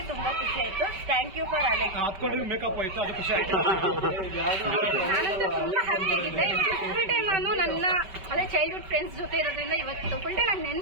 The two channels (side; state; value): left; late; 5.2 ms